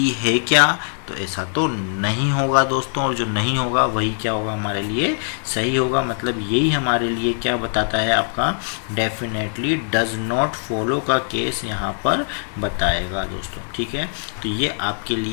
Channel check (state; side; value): silent; right; digital silence